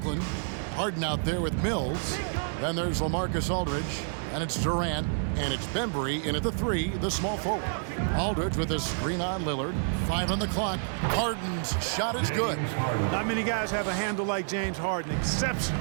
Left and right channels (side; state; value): left; silent; 59 dB below the other